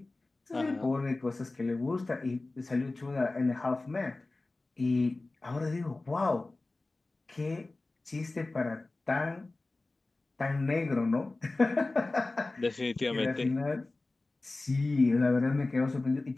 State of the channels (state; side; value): quieter; right; 3.2 dB